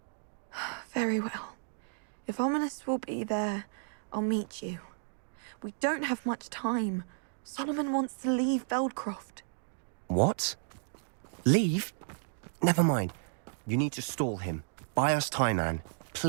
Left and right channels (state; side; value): silent; left; digital silence